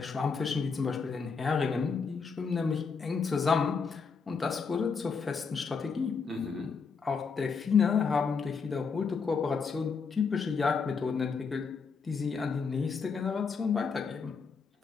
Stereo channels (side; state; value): right; quieter; 5.4 dB